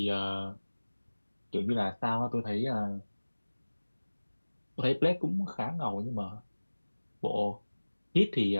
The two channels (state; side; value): inverted; both; correlation -1.00